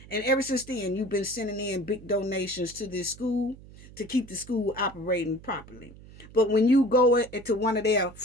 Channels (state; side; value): noise; right; hum, 19 dB below the sound